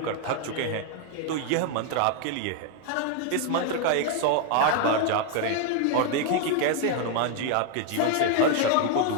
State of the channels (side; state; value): both; different; correlation 0.01